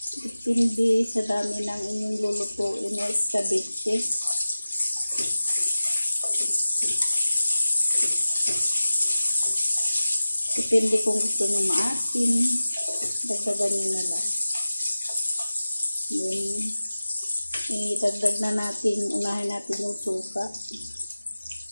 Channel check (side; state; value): both; inverted; correlation -0.96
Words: depende sa dami ng inyong lulutuin na escabeche. Depende kung gusto nyo maasin, dagdagan nyo na lang. Yun. Idagdag na natin, unahin natin yung suka.